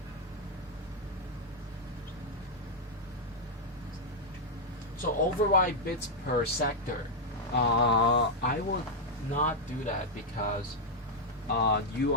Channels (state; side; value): normal; both; correlation -0.02